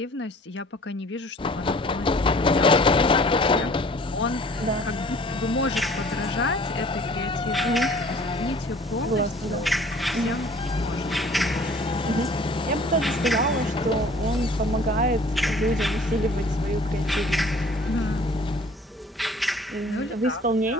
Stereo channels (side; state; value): both; normal; correlation 0.51